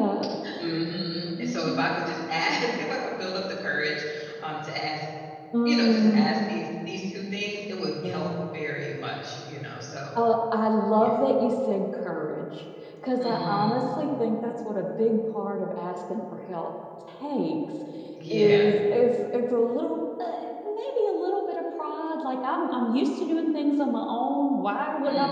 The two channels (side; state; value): both; identical; correlation 1.00